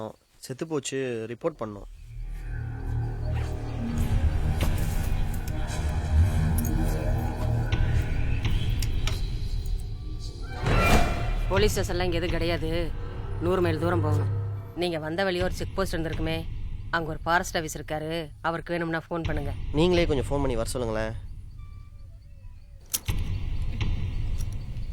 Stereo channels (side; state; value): both; identical; correlation 1.00